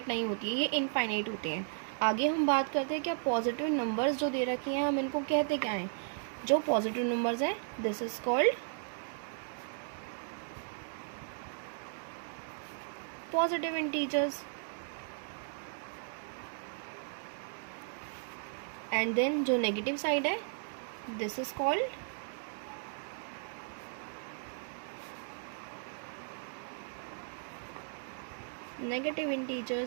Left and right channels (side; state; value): left; silent; digital silence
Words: नहीं होती है, ये इनफाइनाइट होते हैं. आगे हम बात करते हैं क्या पॉजिटिव नंबर्स जो दे रखे हैं हम इनको कहते क्या हैं. जो पॉजिटिव नंबर्स हैं this is called positive integers. And then जो नेगेटिव साइड है this is called negative